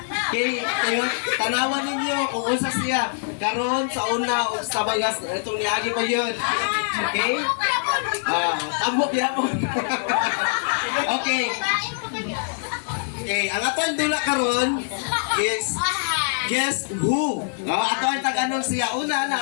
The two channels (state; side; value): silent; right; digital silence